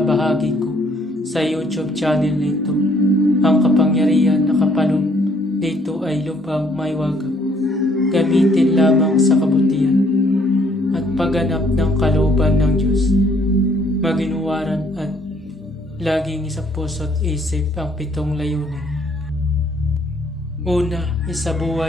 ko sa YouTube channel nito. Ang kapangyarihan na kapaloob dito ay lubhang maiwagang. Gamitin lamang sa kabutihan at pagganap ng kalooban ng Diyos. Maginuwaran at laging sa puso't isip ang 7 layunin. Una,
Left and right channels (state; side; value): normal; both; correlation 0.65